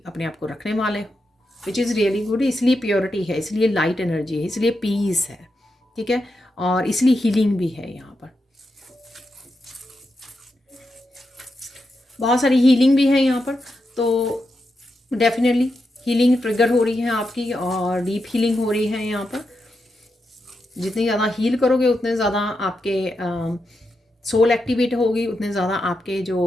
अपने आप को रखने वाले हो, विच इज़ रियली गुड। इसलिए प्योरिटी है, इसलिए लाइट एनर्जी है, इसलिए पीस है, ठीक है, और इसलिए हीलिंग भी है यहाँ पर। बहुत सारी हीलिंग भी है यहाँ पर, तो डेफिनेटली हीलिंग ट्रिगर हो रही है आपकी और डीप हीलिंग हो रही है यहाँ पर। जितनी ज़्यादा हील करोगे उतने ज़्यादा आपके सोल एक्टिवेट होगी, उतने ज़्यादा आपके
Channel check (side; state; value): both; normal; correlation 0.86